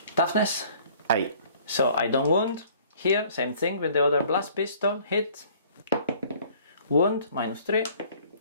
Toughness. 8. So I don't wound. Here, same thing with the other Blast Pistol. Hit. Wound, -3.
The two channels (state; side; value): inverted; both; correlation -0.54